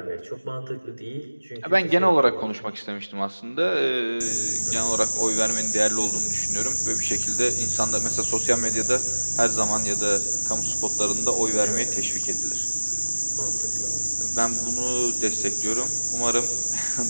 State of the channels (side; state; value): both; inverted; correlation -1.00